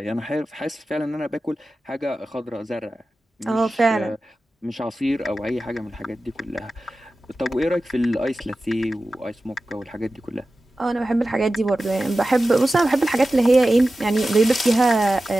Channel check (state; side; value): normal; both; correlation 0.94